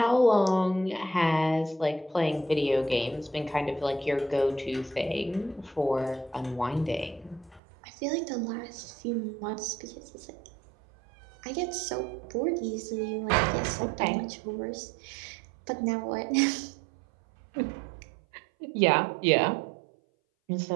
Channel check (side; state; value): left; drops out; at 7.6 s